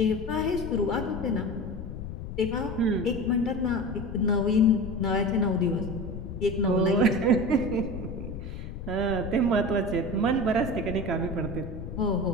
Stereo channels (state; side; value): noise; left; rumble, 8 dB below the sound